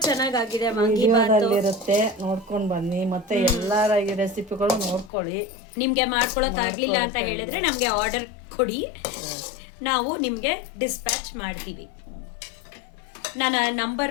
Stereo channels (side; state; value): right; drops out; at 5.1 s